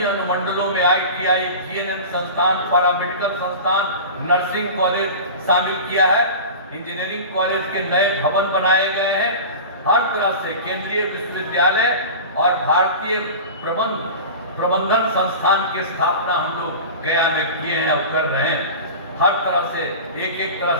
अनुमंडलों में ITI, GNM संस्थान, पैरामेडिकल संस्थान, नर्सिंग कॉलेज शामिल किया है। इंजीनियरिंग कॉलेज के नए भवन बनाए गए हैं। हर तरह से केंद्रीय विश्वविद्यालय और भारतीय प्रबंधन संस्थान की स्थापना हम लोग गया में किए हैं और कर रहे हैं। हर तरह से एक तरह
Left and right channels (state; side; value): inverted; both; correlation -0.32